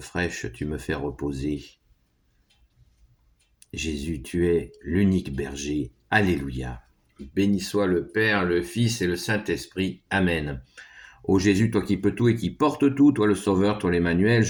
tu me fais reposer. Jésus, tu es l'unique berger. Alléluia. Béni soit le Père, le Fils et le Saint-Esprit. Amen. Ô Jésus, toi qui peux tout et qui portes tout, toi le Sauveur, toi l'Emmanuel,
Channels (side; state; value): both; identical; correlation 1.00